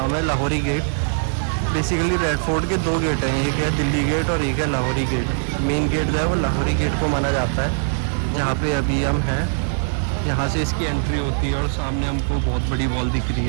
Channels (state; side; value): silent; left; 60 dB below the other